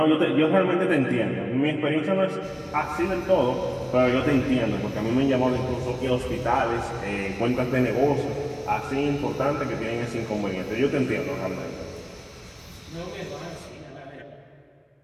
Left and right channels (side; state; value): both; identical; correlation 1.00